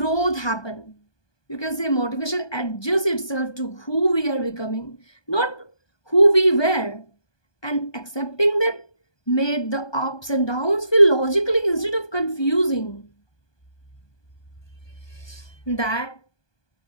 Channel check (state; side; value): late; right; 1.2 ms